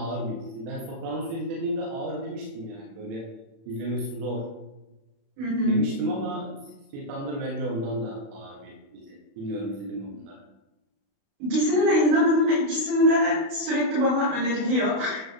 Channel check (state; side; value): late; left; 36 ms